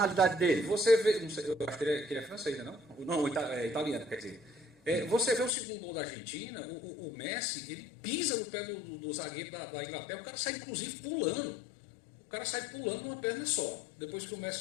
dele. Você vê, não sei, eu acho que ele é francês, não? Não, italiano, quer dizer. Você vê o segundo gol da Argentina, o Messi, ele pisa no pé do zagueiro da Inglaterra, o cara sai inclusive pulando. O cara sai pulando numa perna só, depois que o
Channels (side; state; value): right; drops out; at 5.6 s